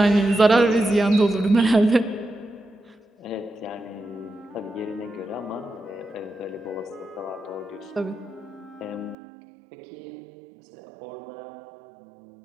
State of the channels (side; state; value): left; drops out; at 9.2 s